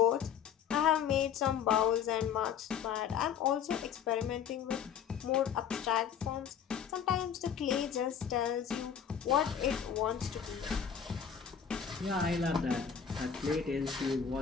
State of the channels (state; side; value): quieter; right; 7.9 dB